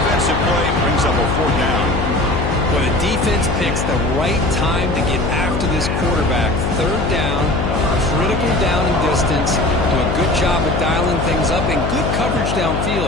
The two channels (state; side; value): noise; left; hum, 1 dB below the sound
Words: play, brings up a 4th down. Well, the defense picks the right time to get after this quarterback. 3rd down, critical down and distance. Do a good job of dialing things up and good coverage